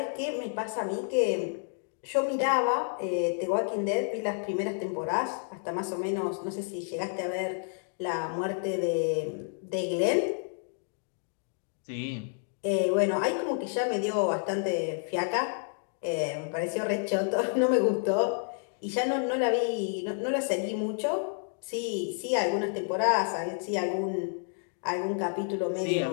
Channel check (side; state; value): right; silent; 58 dB below the other